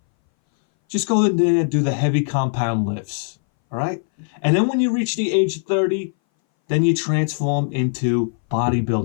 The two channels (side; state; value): right; silent; 61 dB below the other